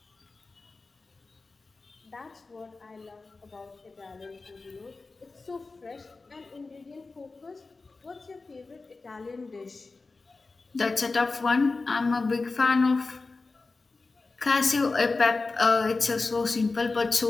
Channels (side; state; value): right; quieter; 3.8 dB